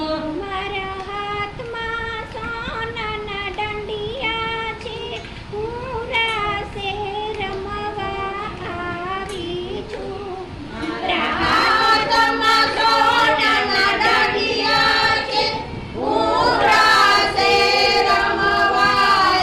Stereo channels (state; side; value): identical; both; correlation 1.00